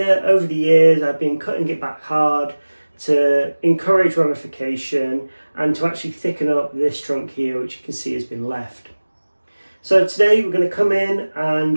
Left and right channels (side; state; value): both; inverted; correlation -1.00